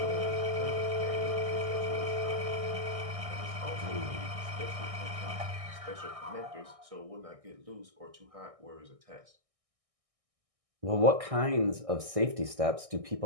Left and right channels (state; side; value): late; left; 1.6 ms